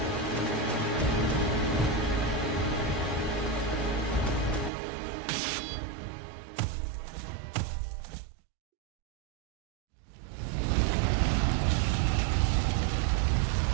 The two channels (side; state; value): left; drops out; at 4.7 s